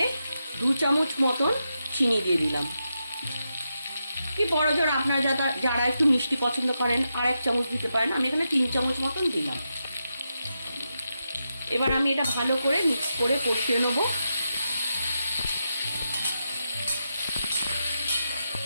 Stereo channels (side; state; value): both; inverted; correlation -0.86